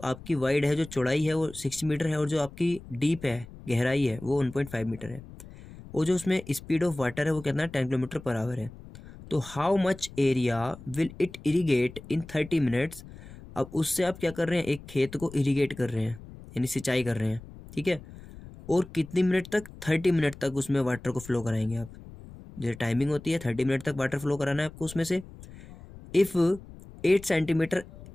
आपकी वाइड है, जो चौड़ाई है वो 6 मीटर है, और जो आपकी डीप है, गहराई है, वो 1.5 मीटर है, और जो उसमें स्पीड ऑफ वाटर है वो कितना 10 किलोमीटर पर आवर है। तो how much area will it irrigate in 30 minutes. अब उससे आप क्या कर रहे हैं, एक खेत को इरीगेट कर रहे हैं, यानी सिंचाई कर रहे हैं। ठीक है, और कितनी मिनट तक, 30 मिनट तक उसमें वाटर को फ्लो कराएंगे आप। जो टाइमिंग होती है 30 मिनट तक वाटर फ्लो कराना है आपको उसमें से। If 8 centimetre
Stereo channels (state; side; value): noise; left; rumble, 17 dB below the sound